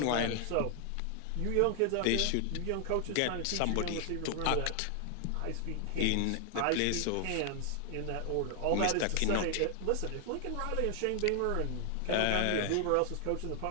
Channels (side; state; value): both; different; correlation 0.00